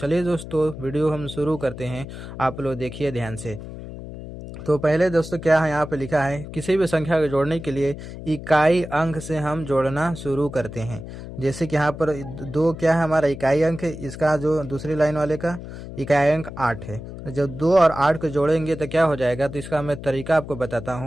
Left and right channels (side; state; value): left; noise; hum, 11 dB below the sound